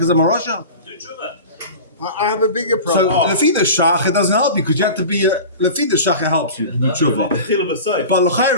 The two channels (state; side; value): inverted; both; correlation -0.34